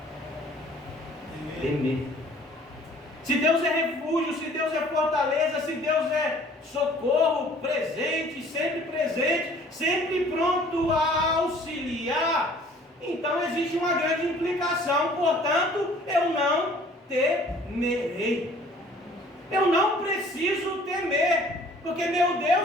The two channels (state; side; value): normal; both; correlation 0.53